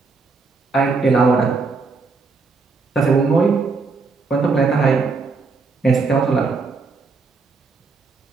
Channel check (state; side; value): quieter; left; 4.3 dB